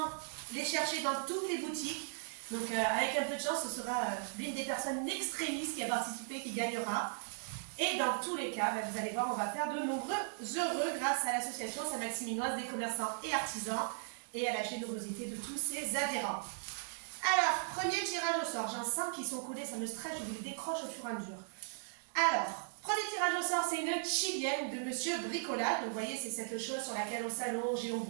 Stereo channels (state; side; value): silent; left; digital silence